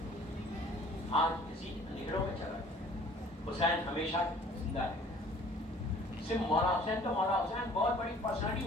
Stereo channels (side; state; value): both; normal; correlation 0.52